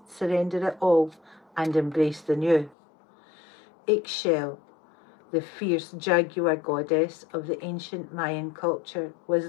surrender it all, and embrace the new. Ixchel, the fierce jaguar goddess of the ancient Mayan culture, was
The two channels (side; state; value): right; drops out; at 2.8 s